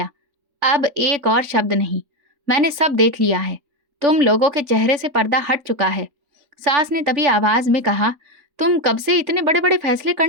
अब एक और शब्द नहीं, मैंने सब देख लिया है। तुम लोगों के चेहरे से पर्दा हट चुका है। सास ने तभी आवाज में कहा, तुम कब से इतने बड़े बड़े फैसले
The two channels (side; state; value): left; late; 3.9 ms